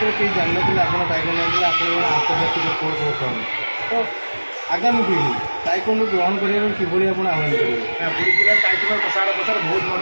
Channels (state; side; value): inverted; both; correlation -1.00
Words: କେହି ଜାଣିନଥିଲେ ଆପଣ ତାଇକୋଣ୍ଡୋ ନେଇଥିଲେ ଆପଣ ଜଣେ ଆନ୍ତର୍ଜାତିକ କୋଚ୍ ବର୍ତ୍ତମାନ ତ ଆଗାମୀ ପିଢ଼ି ତାଇକୋଣ୍ଡୋ ଗ୍ରହଣ କରିବାକୁ କିଭଳି ଆପଣ ଆହ୍ୱାନ କରିବେ? ପୁରୀ ଜିଲ୍ଲାର ତାଇକୋଣ୍ଡୋ ପ୍ରସାର ବହୁତ ଭଲ।